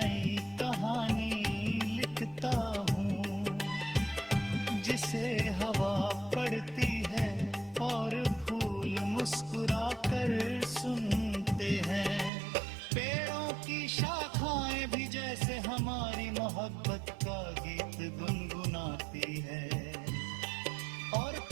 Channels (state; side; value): drops out; left; at 12.3 s